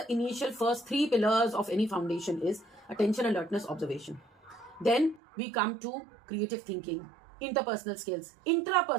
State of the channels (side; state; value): left; drops out; at 5.2 s